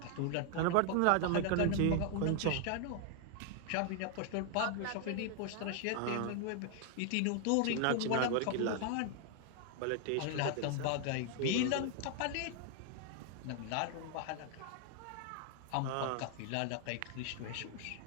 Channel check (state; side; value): different; both; correlation 0.00